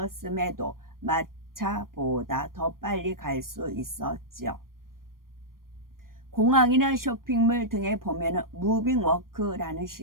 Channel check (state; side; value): late; left; 0.91 ms